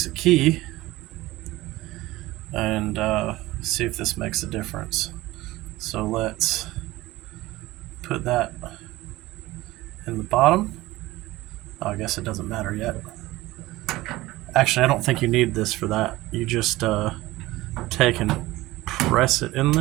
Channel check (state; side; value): quieter; left; 18.3 dB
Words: a key, and see if this makes a difference. So let's put that in the bottom. Oh, I guess it doesn't matter yet. Actually, I don't think you need this for that. You just take and press it in